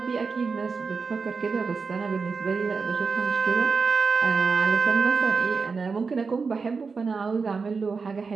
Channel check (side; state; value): left; quieter; 4.9 dB